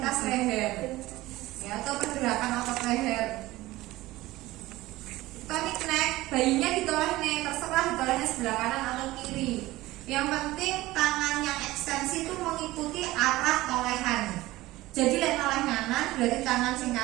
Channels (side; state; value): left; quieter; 18.0 dB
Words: leher, ya, atau pergerakan otot leher. Tonic neck, bayinya ditoleh nih, terserah ditolehnya sebelah kanan atau kiri. Yang penting tangan yang ekstensi itu mengikuti arah tolehan. Jadi lek noleh kanan berarti tangan sing